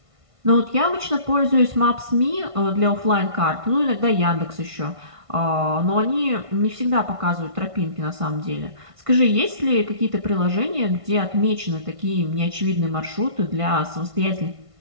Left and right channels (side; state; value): left; late; 1.5 ms